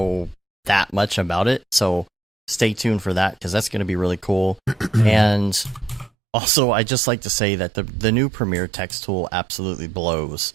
that much about it. So stay tuned for that because that's going to be really cool. And also, I just like to say that the new Premiere text tool absolutely blows.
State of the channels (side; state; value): left; drops out; at 6.1 s